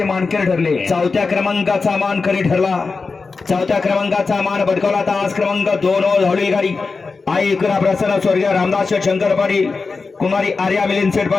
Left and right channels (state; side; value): quieter; right; 4.4 dB